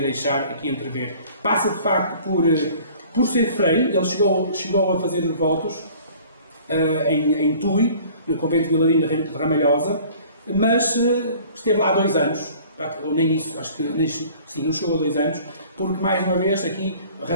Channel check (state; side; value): inverted; both; correlation -0.50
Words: aqui entrever. Passa, de facto, por ser frei. Ele chegou a fazer votos em Tui, no convento de Vilarinho de Ramalhosa, mas esteve lá 2 anos, ou nem isso, acho que não chegou a 2 anos, porque, mais uma vez, aqui a